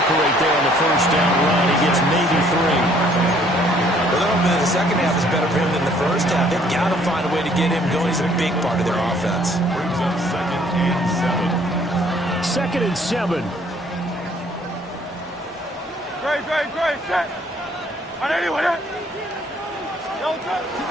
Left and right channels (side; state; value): both; normal; correlation 0.61